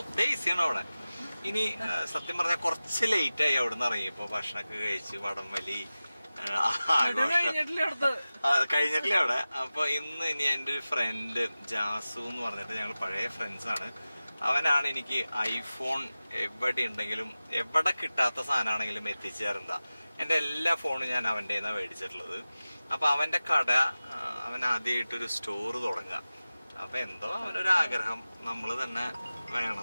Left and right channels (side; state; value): both; inverted; correlation -0.96